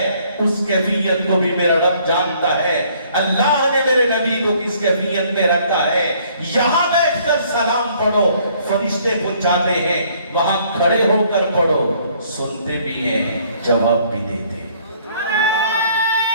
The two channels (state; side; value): inverted; both; correlation -0.62